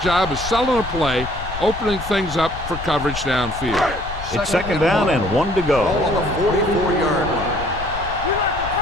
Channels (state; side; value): noise; left; rumble, 10 dB below the sound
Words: job of selling a play, opening things up for coverage downfield. It's second down and 1 to go. Ball on the 44-yard line.